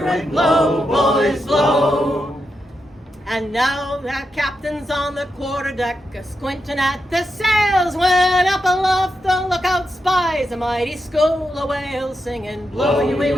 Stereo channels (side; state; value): both; normal; correlation 0.86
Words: and blow, boys, blow. And now that captain's on the quarterdeck, squinting at the sails, when up aloft the lookout spies a mighty school of whales, singing, blow your